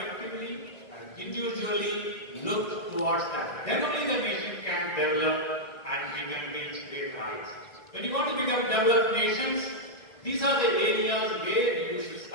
and individually look towards that. Then only the nation can develop and we can reach their heights. When you want to become developed nations, these are the areas where you should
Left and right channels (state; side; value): late; right; 1.9 ms